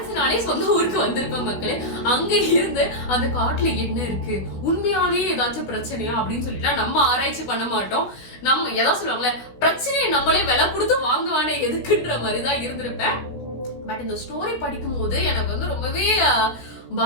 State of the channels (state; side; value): late; right; 16 ms